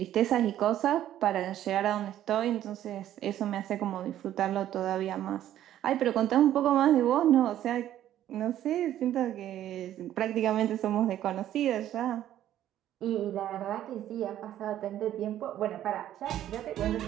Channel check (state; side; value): quieter; left; 12.1 dB